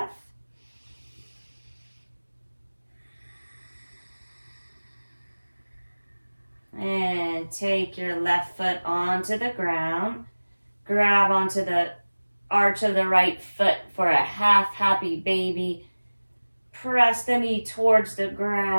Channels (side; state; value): both; inverted; correlation -1.00